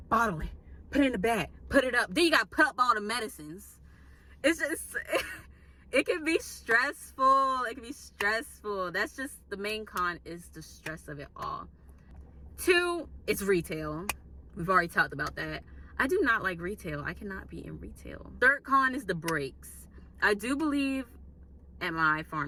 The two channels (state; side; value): identical; both; correlation 1.00